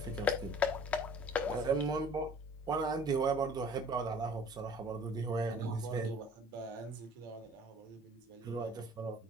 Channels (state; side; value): normal; both; correlation 0.51